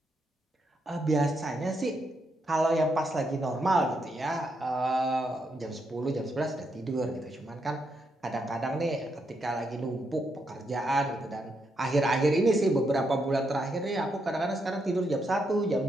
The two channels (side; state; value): both; normal; correlation 0.80